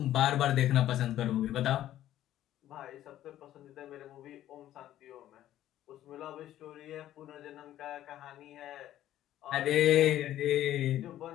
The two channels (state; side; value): quieter; right; 12.8 dB